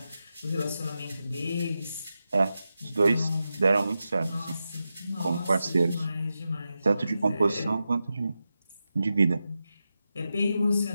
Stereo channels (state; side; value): inverted; both; correlation -0.90